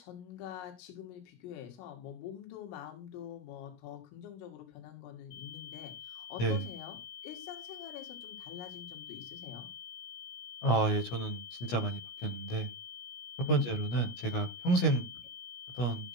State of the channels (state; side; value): late; right; 17 ms